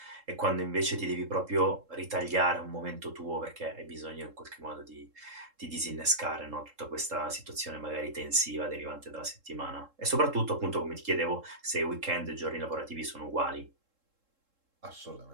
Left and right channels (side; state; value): left; late; 3.7 ms